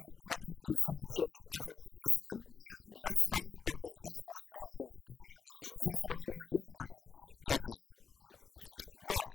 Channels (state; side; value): quieter; right; 5.9 dB